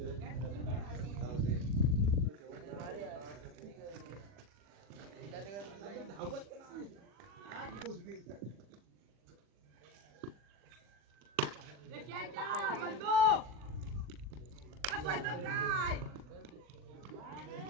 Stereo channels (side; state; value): left; late; 40 ms